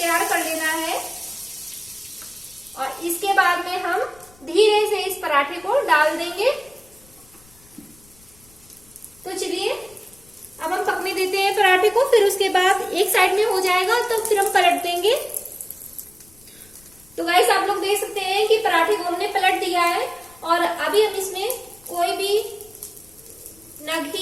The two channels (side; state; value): left; noise; rumble, 27 dB below the sound